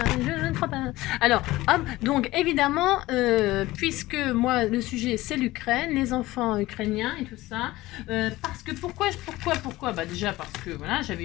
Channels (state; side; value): quieter; right; 18.1 dB